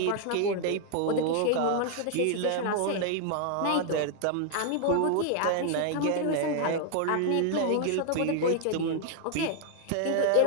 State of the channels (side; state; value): both; different; correlation 0.00